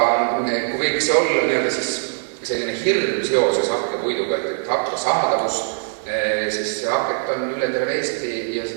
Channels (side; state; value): left; silent; 57 dB below the other